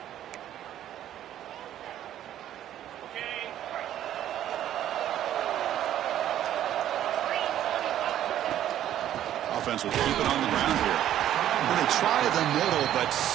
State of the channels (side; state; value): left; quieter; 11.7 dB